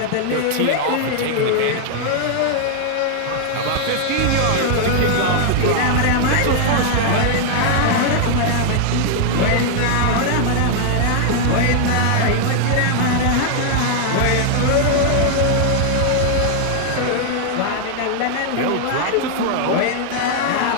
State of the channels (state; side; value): different; both; correlation 0.00